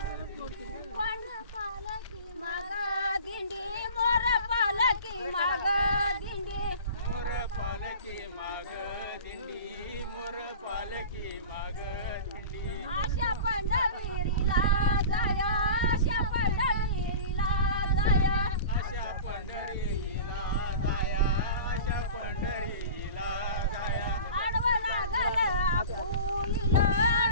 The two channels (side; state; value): both; inverted; correlation -0.36